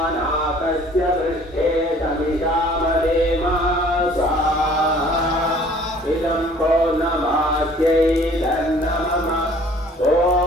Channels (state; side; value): normal; both; correlation 0.53